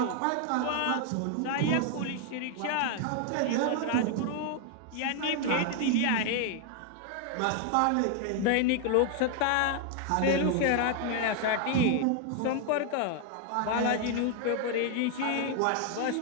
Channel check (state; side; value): different; both; correlation 0.00